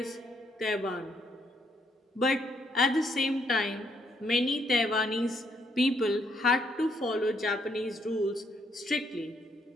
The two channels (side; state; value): both; normal; correlation 0.73